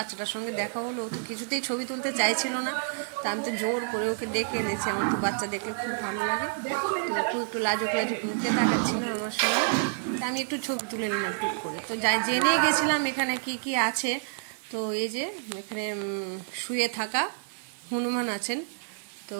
সঙ্গে দেখা হলো। ও তো কিছুতেই ছবি তুলতে চাইছিল না, তা আমি তো জোর করে ওকে ডেকে এনেছি। আমার তো বাচ্চা দেখলে খুব ভালো লাগে, তো একটু লাজুক লাজুক মুখে তাকাচ্ছিল আমার সঙ্গে। তা আমি একটু ছবি তুলে নিলাম টুক করে। তো যাই জেনে গেছিলাম এখানে কি কি আছে। তো এই যে এখানে শুয়ে থাকা হনুমান আছেন, তো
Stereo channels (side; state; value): left; silent; digital silence